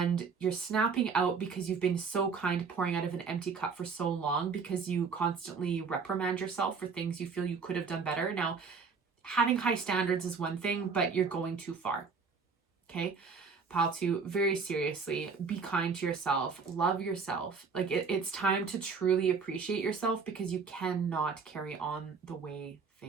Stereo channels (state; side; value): quieter; left; 5.2 dB